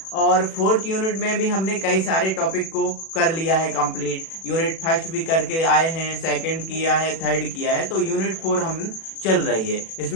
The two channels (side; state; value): right; late; 37 ms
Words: और 4th यूनिट में भी हमने कई सारे टॉपिक को कर लिया है कंप्लीट। यूनिट फर्स्ट भी करके आए हैं, सेकंड किया है, थर्ड किया है, तो यूनिट 4 हम चल रही है।